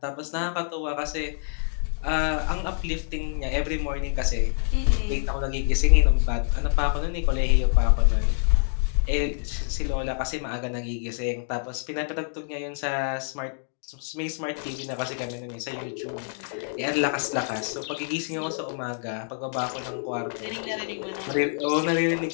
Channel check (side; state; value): right; silent; 61 dB below the other